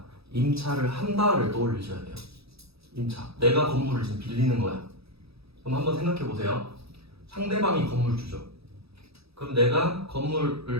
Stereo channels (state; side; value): late; left; 0.77 ms